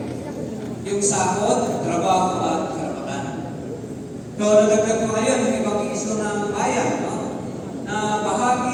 yung sahod, trabaho at karapatan. So, nadagdag ko ngayon yung ibang issue ng bayan, no, na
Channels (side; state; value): both; identical; correlation 1.00